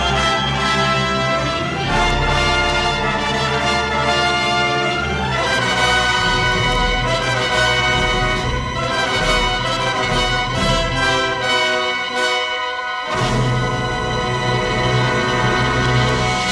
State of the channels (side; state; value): both; identical; correlation 1.00